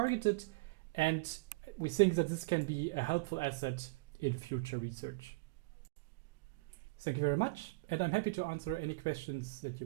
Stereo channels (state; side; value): quieter; left; 25.8 dB